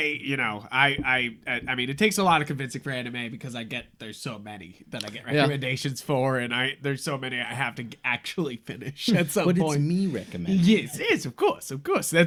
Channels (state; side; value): identical; both; correlation 1.00